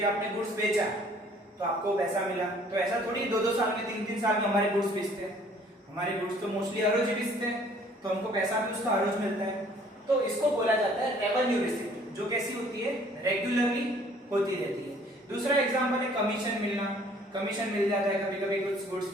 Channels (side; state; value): both; normal; correlation 0.57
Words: आपने गुड्स बेचा तो आपको पैसा मिला, तो ऐसा थोड़ी 2-2 साल में 3-3 साल में हमारे गुड्स बेचते हैं। हमारे गुड्स तो मोस्टली हर रोज बेचते हैं, तो हमको पैसा भी उसका हर रोज मिलता है, तो इसको बोला जाता है रेवेन्यू रिसिप्ट, जो कैसी होती है, रेगुलरली होती रहती है। दूसरा एग्जांपल है कमीशन मिलना, कमीशन मिल जाता है कभी कभी कुछ गुड्स